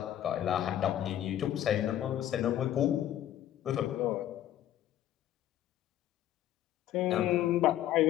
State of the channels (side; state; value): right; quieter; 12.2 dB